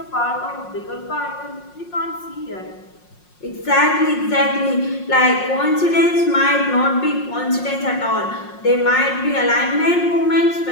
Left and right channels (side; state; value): right; late; 5.6 ms